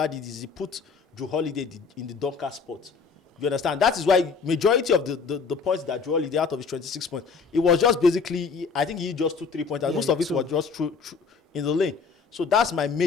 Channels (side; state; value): right; quieter; 5.2 dB